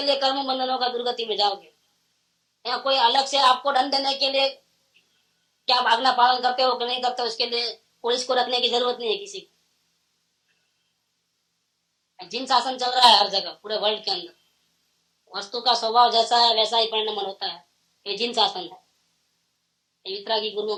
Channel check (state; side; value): identical; both; correlation 1.00